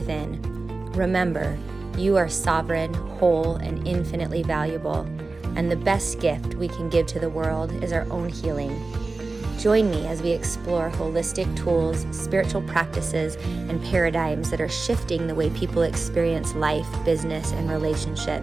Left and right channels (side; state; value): left; quieter; 3.6 dB